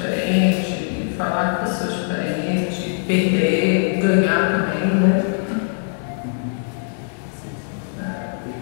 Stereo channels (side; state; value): right; silent; 65 dB below the other